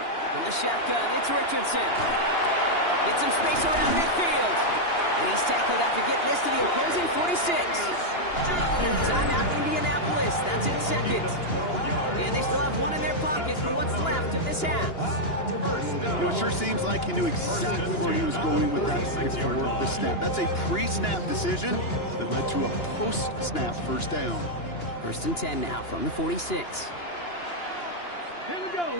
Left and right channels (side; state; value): right; late; 2.9 ms